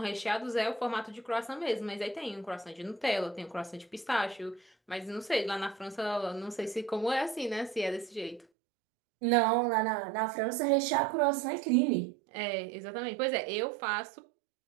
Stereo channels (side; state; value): left; drops out; at 8.5 s